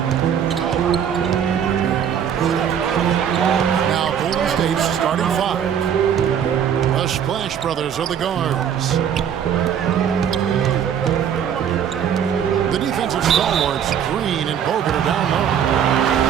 Now Golden State's starting five. The Splash Brothers are the guards. The defensive stalwarts, Green and Bogut, are down low.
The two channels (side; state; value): left; quieter; 8.6 dB